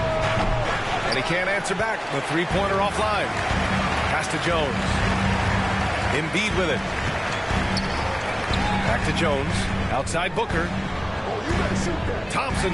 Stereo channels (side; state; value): both; identical; correlation 1.00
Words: And he can't answer back. The three-pointer offline. Pass to Jones. Embiid with it. Back to Jones. Outside Booker. Thompson